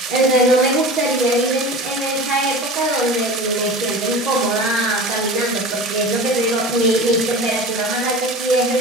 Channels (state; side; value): normal; both; correlation 0.35